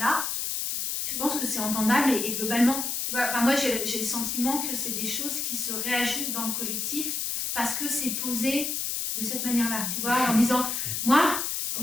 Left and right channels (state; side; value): noise; left; hiss, 1 dB below the sound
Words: je pense que c'est entendable et globalement, tu vois, moi j'ai le sentiment que c'est des choses qui se réajustent dans le collectif parce que c'est posé de cette manière-là, tu vois, en disant, moi,